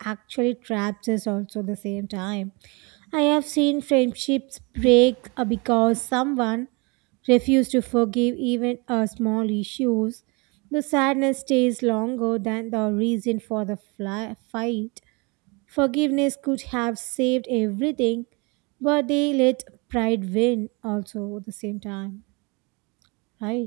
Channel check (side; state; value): left; quieter; 29.3 dB